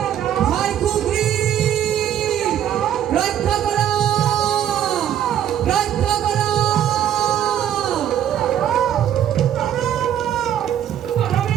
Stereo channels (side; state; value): left; quieter; 10.5 dB